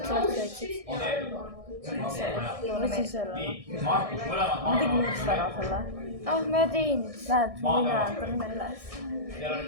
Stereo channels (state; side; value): late; left; 1.6 ms